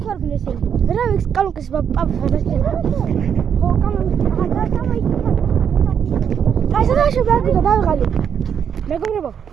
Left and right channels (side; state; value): left; quieter; 7.9 dB